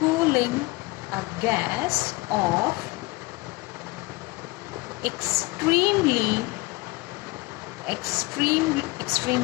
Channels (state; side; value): quieter; right; 22.9 dB